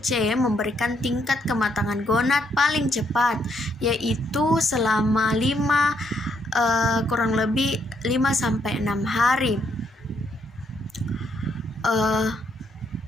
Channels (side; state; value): both; normal; correlation 0.73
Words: C memberikan tingkat kematangan gonad paling cepat, yaitu selama kurang lebih 5-6 hari.